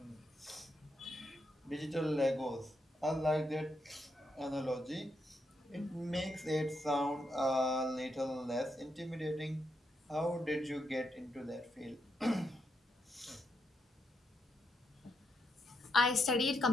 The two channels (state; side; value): normal; both; correlation 0.81